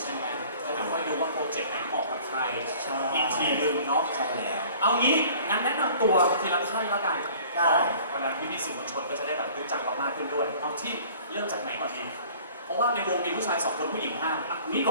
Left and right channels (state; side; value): inverted; both; correlation -0.50